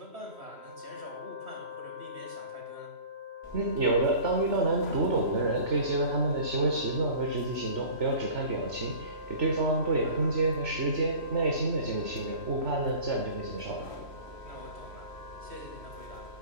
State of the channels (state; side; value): late; left; 3.0 ms